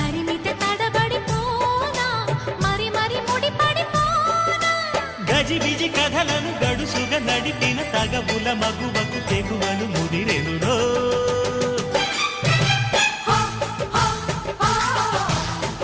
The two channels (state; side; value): identical; both; correlation 1.00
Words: తడబడిపోనా మరి మరి ముడిపడిపోనా గజిబిజి కథలను గడుసుగా నడిపిన తగవుల మగువకు తెగువలు ముదిరెనురో